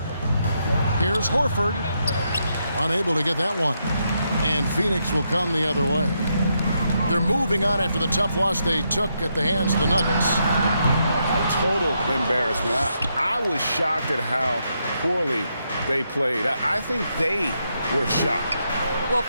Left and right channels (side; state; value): both; inverted; correlation -0.80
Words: Here's Horford. Unable to get that one. And Phoenix will come the other way. They're moving on after the tough loss they took at the hands of the Nuggets. Total embarrassment. I was shocked at how poorly they played. I think they were shocked. Well,